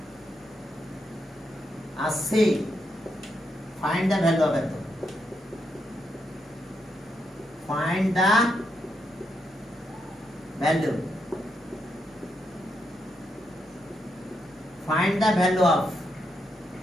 R C, find the value of এত। Find the value. Find the value of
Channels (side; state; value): both; normal; correlation 0.81